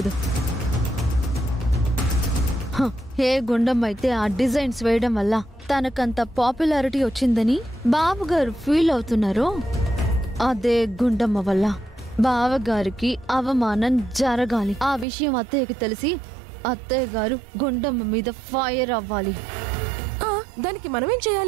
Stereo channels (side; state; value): left; drops out; at 15.1 s